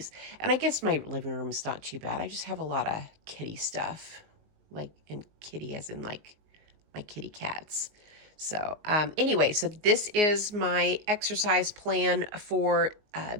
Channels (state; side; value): late; left; 19 ms